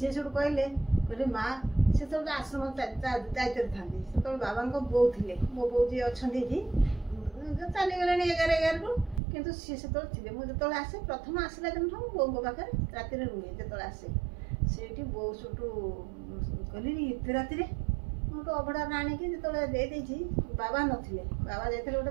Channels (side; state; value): left; drops out; at 9.2 s